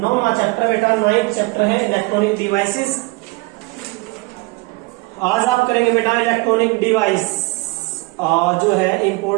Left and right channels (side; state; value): left; quieter; 25.1 dB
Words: चैप्टर बेटा, 9th चैप्टर है इलेक्ट्रॉनिक डिवाइसेस। आज आप करेंगे बेटा इलेक्ट्रॉनिक डिवाइस, जो है